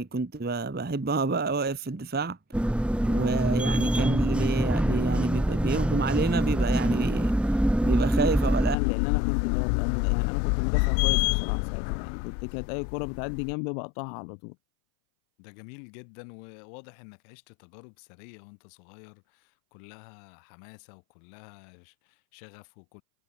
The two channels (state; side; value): drops out; right; at 8.8 s